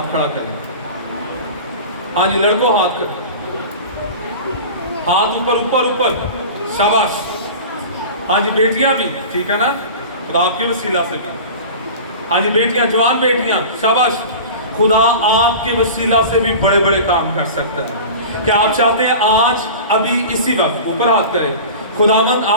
खड़ा करें। हाँ जी, लड़कों हाथ कर, हाथ ऊपर ऊपर ऊपर, शाबाश। हाँ जी, बेटियां भी, ठीक है ना, खुदा आपके वसीला से भी। हाँ जी बेटियां, जवान बेटियां, शाबाश। खुदा आपके वसीला से भी बड़े बड़े काम कर सकता है। क्या आप चाहते हैं आज अभी इसी वक्त ऊपर हाथ करें, खुदावंद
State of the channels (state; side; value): inverted; both; correlation -0.35